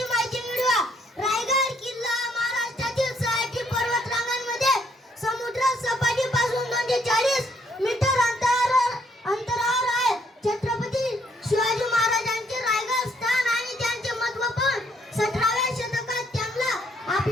माहिती मिळवूया. रायगड किल्ला महाराष्ट्रातील 6 पर्वतरांगांमध्ये समुद्र सपाटीपासून 240 मीटर अंतरावर आहे. छत्रपती शिवाजी महाराजांचे रायगड स्थान आणि त्यांचे महत्त्व पण 17व्या शतकात त्यांना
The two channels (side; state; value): both; normal; correlation 0.69